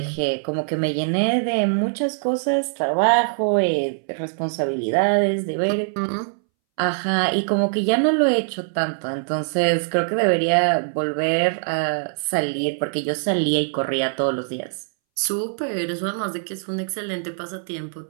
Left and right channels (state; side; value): silent; left; 63 dB below the other